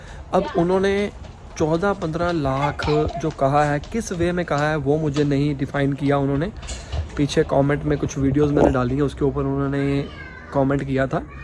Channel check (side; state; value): both; identical; correlation 1.00